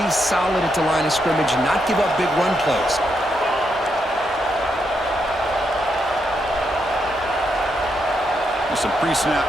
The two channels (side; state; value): both; normal; correlation 0.80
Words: solid at the line of scrimmage and not give up big run plays. Some pre-snap